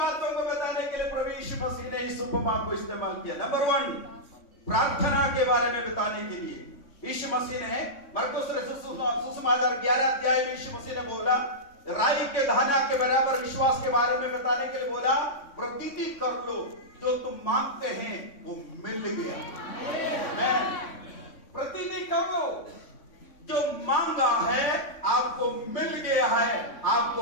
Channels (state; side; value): late; right; 3.6 ms